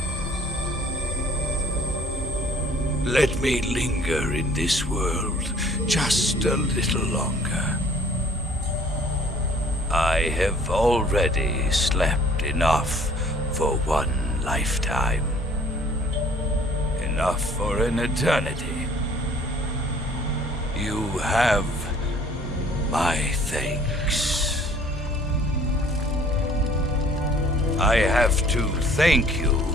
Let me linger in this world just a little longer. I have already slept enough for one lifetime. Enough for an eternity. You have my thanks. I have to thank you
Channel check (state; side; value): normal; both; correlation 0.55